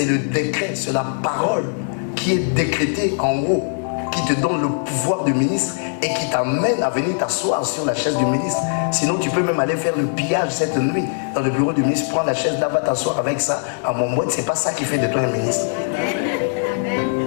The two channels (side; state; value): right; silent; digital silence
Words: le décret, c'est la parole qui est décrétée en haut, qui te donne le pouvoir du ministre et qui t'amène à venir t'asseoir sur la chaise du ministre. Sinon, tu peux même aller faire le pillage cette nuit dans le bureau du ministre, prends la chaise là, va t'asseoir avec ça. À mon mot, c'est pas ça qui fait de toi un ministre.